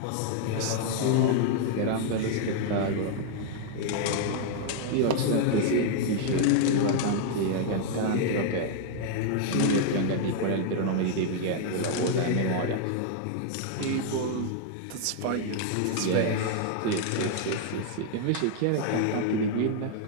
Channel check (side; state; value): both; different; correlation 0.00